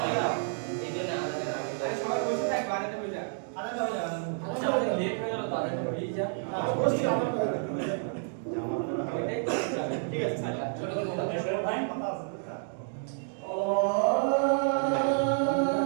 হয় এই জন্য আগাদের আগে সবাই বসে থাকবে আগাতে হয়ে যায়। ঠিক আছে ছোট করে বলো।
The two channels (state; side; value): silent; left; digital silence